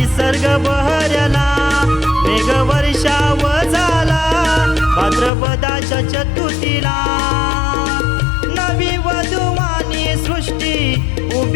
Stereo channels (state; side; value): drops out; right; at 5.3 s